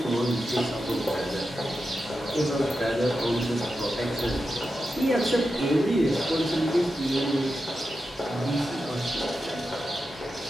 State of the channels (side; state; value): both; normal; correlation 0.90